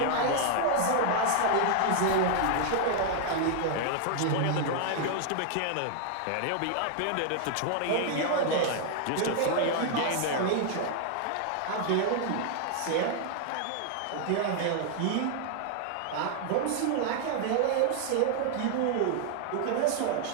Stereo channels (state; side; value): different; both; correlation 0.00